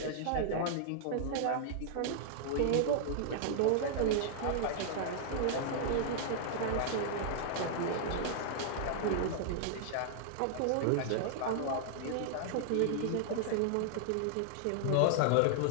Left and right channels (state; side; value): different; both; correlation -0.01